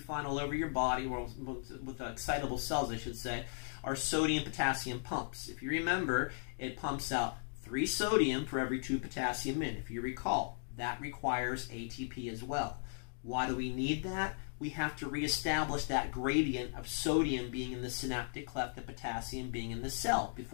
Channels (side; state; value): right; silent; digital silence